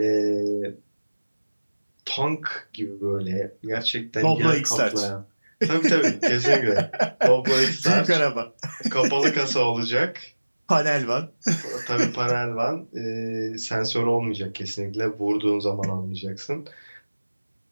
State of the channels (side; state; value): both; inverted; correlation -1.00